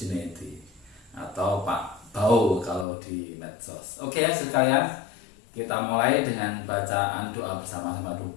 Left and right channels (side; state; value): right; drops out; at 2.9 s